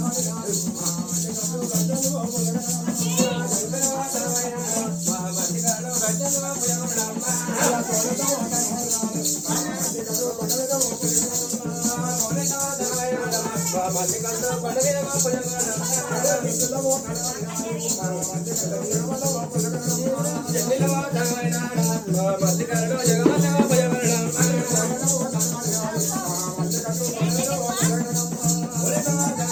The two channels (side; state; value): both; identical; correlation 1.00